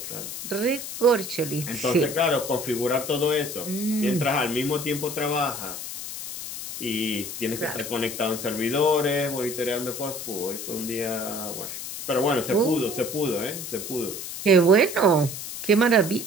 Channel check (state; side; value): noise; left; hiss, 8 dB below the sound